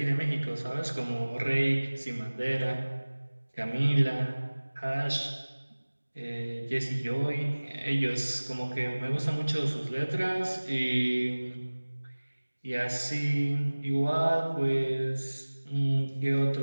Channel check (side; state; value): both; inverted; correlation -1.00